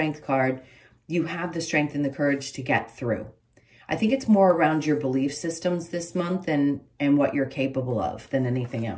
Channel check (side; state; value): both; identical; correlation 1.00